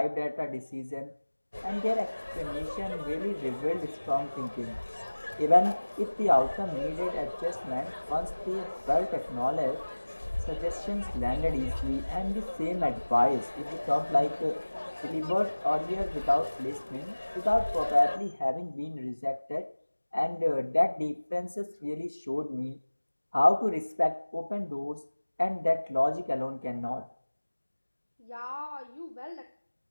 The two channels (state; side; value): inverted; both; correlation -1.00